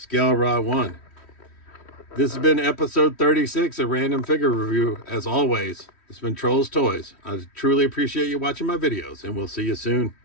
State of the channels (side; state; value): right; late; 3.1 ms